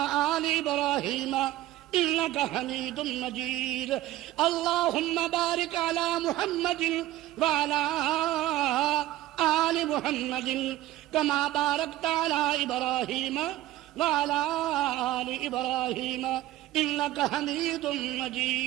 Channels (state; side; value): quieter; left; 15.3 dB